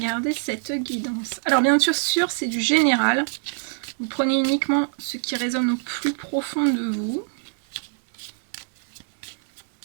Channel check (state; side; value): silent; left; digital silence